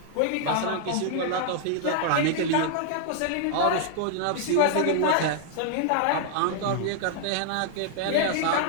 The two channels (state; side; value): different; both; correlation -0.01